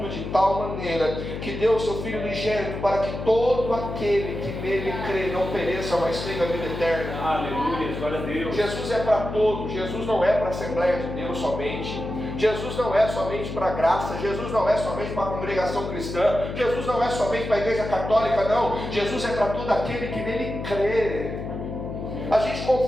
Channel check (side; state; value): left; noise; hum, 7 dB below the sound